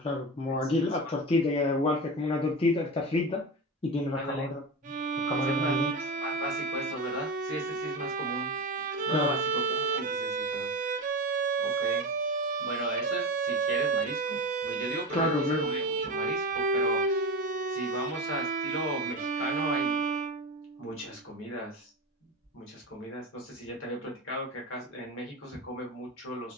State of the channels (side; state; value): both; normal; correlation 0.22